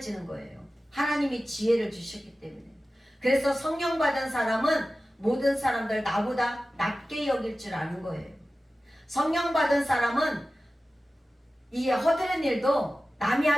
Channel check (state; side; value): normal; both; correlation 0.95